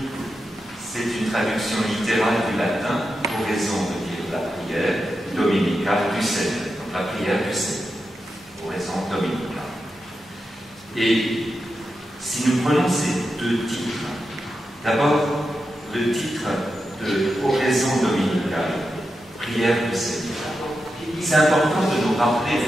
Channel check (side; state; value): both; normal; correlation 0.89